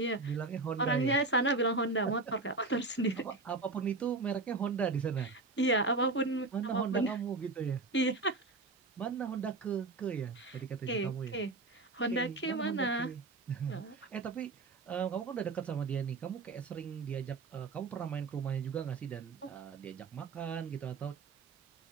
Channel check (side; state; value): left; quieter; 3.5 dB